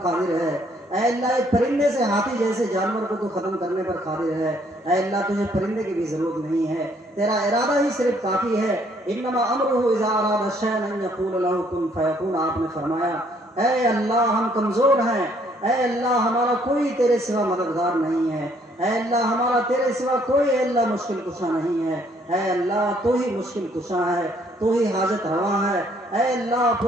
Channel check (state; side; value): normal; both; correlation 0.66